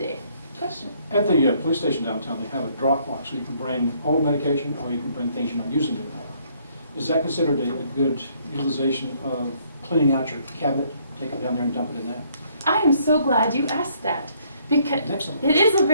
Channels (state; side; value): inverted; both; correlation -0.66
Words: Question? At the police station downtown, they have a drop box, so you can bring old medication or you can bring things you're not using anymore. Is that considered a good utilization of cleaning out your cabinet? Take it down there and dump it in that? I am so glad you asked that, because Excellent. it is a